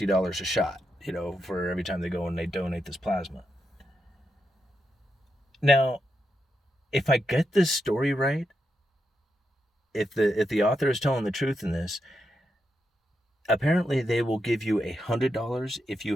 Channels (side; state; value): both; normal; correlation 0.84